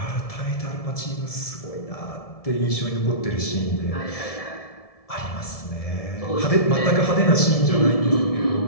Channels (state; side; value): late; right; 1.7 ms